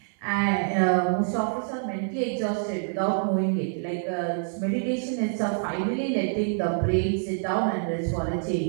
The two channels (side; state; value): left; silent; digital silence